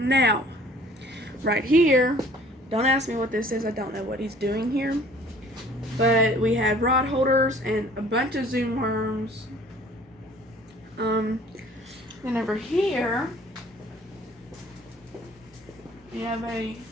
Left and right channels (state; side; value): normal; both; correlation 0.53